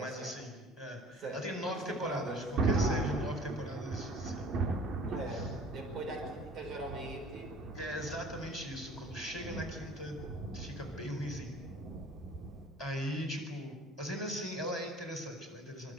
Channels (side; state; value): both; normal; correlation 0.47